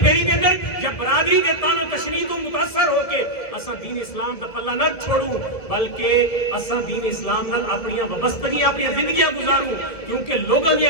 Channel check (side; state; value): right; late; 1.6 ms